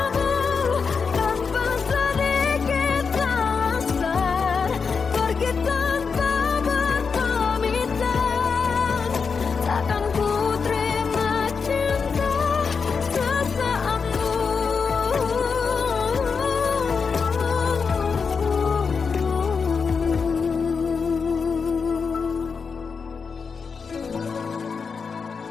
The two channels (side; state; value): right; quieter; 5.4 dB